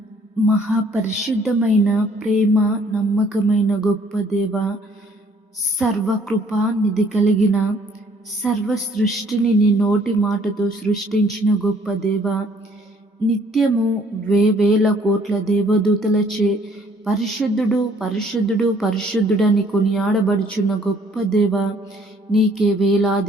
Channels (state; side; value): normal; both; correlation 0.61